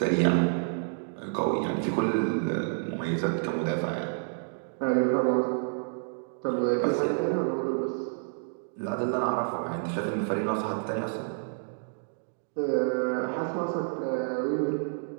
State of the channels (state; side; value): silent; left; digital silence